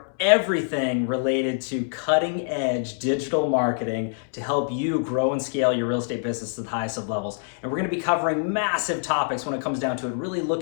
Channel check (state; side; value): silent; right; 62 dB below the other